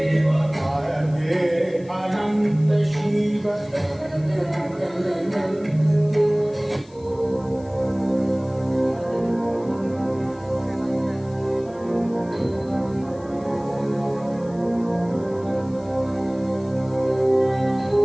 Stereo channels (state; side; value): noise; left; hiss, 28 dB below the sound